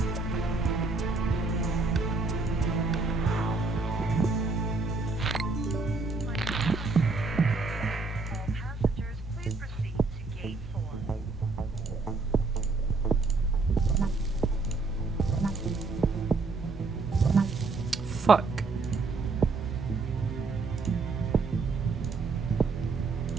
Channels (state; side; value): quieter; left; 3.8 dB